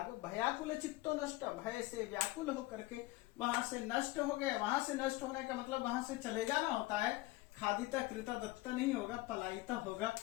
भयाकुल चित्तो नष्ट, भय से व्याकुल होकर के वहां से नष्ट हो गए। वहां से नष्ट होने का मतलब वहां से चले जाना होता है, खादिता कृता दत्ता नहीं होगा, पलायिता होगा,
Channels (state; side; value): quieter; right; 19.5 dB